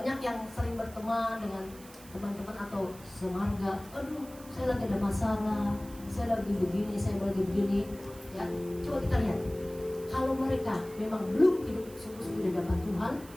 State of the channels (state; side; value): noise; right; hiss, 20 dB below the sound